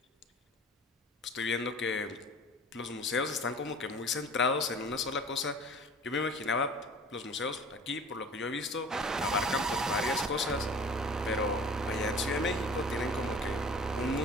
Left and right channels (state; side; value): normal; both; correlation 0.44